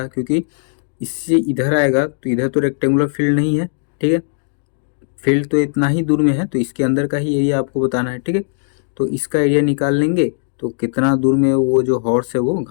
क्योंकि इससे इधर आएगा तो इधर तो रेक्टेंगुलर फील्ड नहीं है। ठीक है, फील्ड तो इतना ही दूर में है, तो इसके अंदर का ही एरिया आपको बताना है। ठीक है, तो इसका एरिया निकाल लेंगे तो कितना दूर में वो जो हॉर्स है वो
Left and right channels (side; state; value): right; silent; digital silence